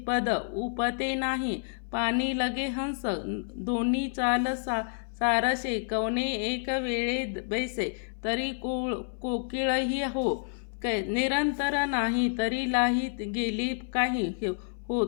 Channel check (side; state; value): right; silent; 57 dB below the other